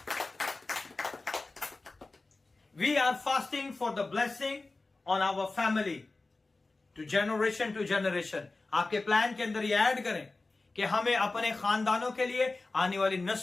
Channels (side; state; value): right; quieter; 3.4 dB